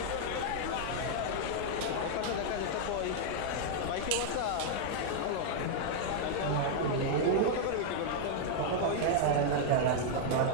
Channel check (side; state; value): both; different; correlation -0.01